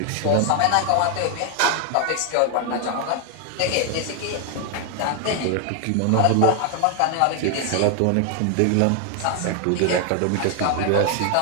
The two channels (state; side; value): different; both; correlation 0.00